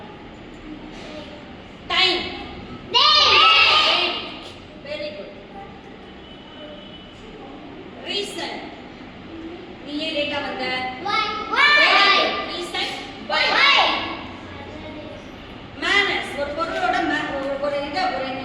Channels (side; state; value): both; identical; correlation 1.00